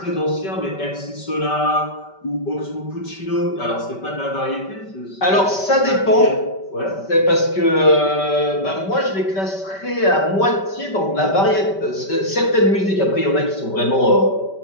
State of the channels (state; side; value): late; right; 5.2 ms